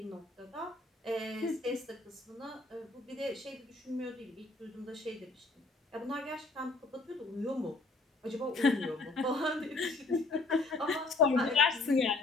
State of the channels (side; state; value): right; quieter; 3.3 dB